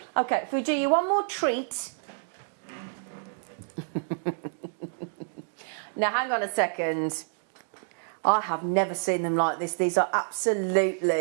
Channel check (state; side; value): silent; left; digital silence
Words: Okay, if we do you one more treat. Now, hang on a second. I have never seen them like this. These are